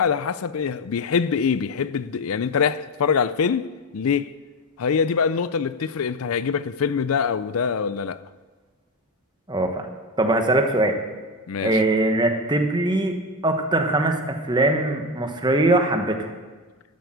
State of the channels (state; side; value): normal; both; correlation 0.15